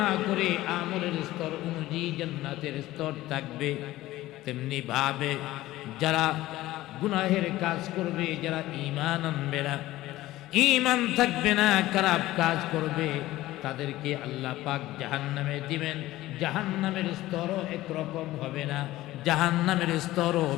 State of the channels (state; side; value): quieter; right; 16.4 dB